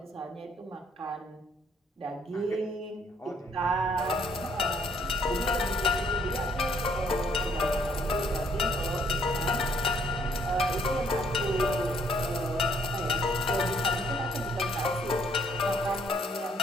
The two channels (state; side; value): normal; both; correlation 0.66